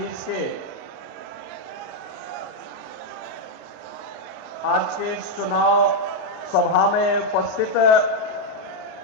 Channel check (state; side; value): normal; both; correlation 0.00